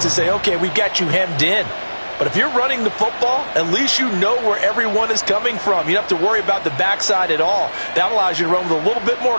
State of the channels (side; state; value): both; inverted; correlation -1.00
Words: say, okay, we've got you hemmed in. But if you're running the football, at least you know where everyone is coming from. You don't have to worry about the backside at all. That allows you to run with a little bit more